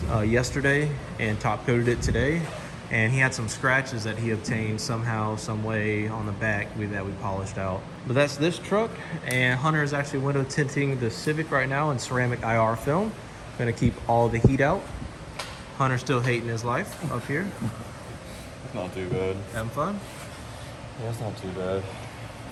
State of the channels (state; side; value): identical; both; correlation 1.00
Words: yesterday and top coated it today. And he had some scratches that he obtained somehow, some way on the back that we polished out. But that's this truck, and Hunter is actually window tinting the Civic right now in ceramic IR film. Gonna keep all the heat out. Hunter's still hating his life up here. It's not too bad. Having fun? Yeah, it's not too bad.